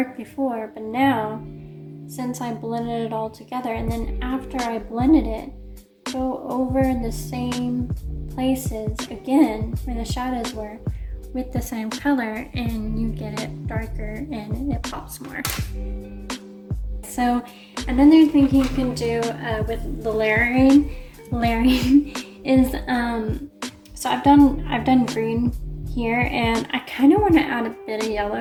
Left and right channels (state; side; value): identical; both; correlation 1.00